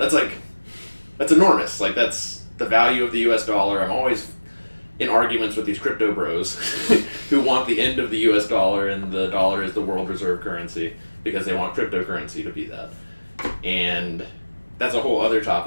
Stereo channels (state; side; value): inverted; both; correlation -1.00